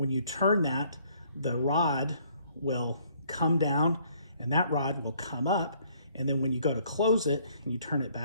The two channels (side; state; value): both; inverted; correlation -0.63